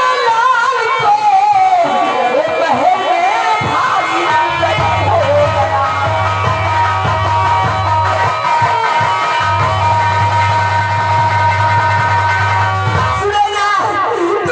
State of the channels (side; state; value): both; identical; correlation 1.00